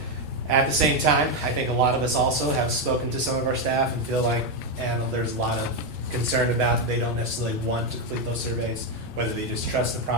At the same time, I think a lot of us also have spoken to some of our staff and feel like, and there's a lot of concern about they don't necessarily want to complete those surveys, whether they just trust the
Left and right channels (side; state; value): both; normal; correlation 0.06